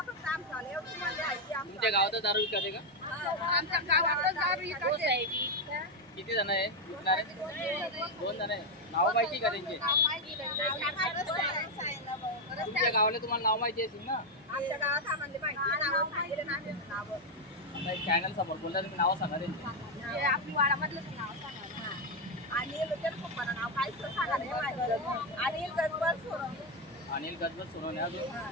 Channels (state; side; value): normal; both; correlation 0.03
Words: फक्त आमचं आलं एवढं म्हणजे आहे। तुमच्या गावात दारू विकते का? आमच्या गावात दारू विकते। किती जण आहे? 2 जण आहे। नाव माहिती का त्यांचे? तुमच्या गावाला तुम्हाला नाव माहिती असेल ना? आमच्या गावात आम्हाला माहिती नाव सांगितलं नाही नाव। आता एक चॅनल समोर बोलता तुम्ही नाव सांगा त्यांची। आपली वाडामधलं नाव सांगा आणि लोकेल पप्पाला नाव काय सांगा। अनिल गजबल सोनवणे, अनिल गजबल सोनवणे,